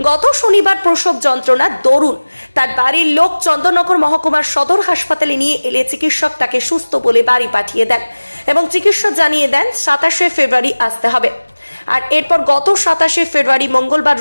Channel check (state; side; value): inverted; both; correlation -1.00